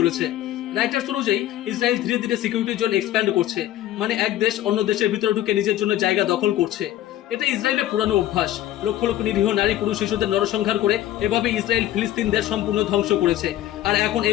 রাইটার্স অনুযায়ী ইসরায়েল ধীরে ধীরে সিকিউরিটি জোন এক্সপ্যান্ড করছে, মানে এক দেশ অন্য দেশের ভিতরে ঢুকে নিজের জন্য জায়গা দখল করছে। এটা ইসরায়েলের পুরানো অভ্যাস। লক্ষ লক্ষ নিরীহ নারী পুরুষ শিশুদের নরসংহার করে এভাবে ইসরায়েল ফিলিস্তিনদের সম্পূর্ণ ধ্বংস করেছে। আর এখন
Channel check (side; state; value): right; quieter; 13.3 dB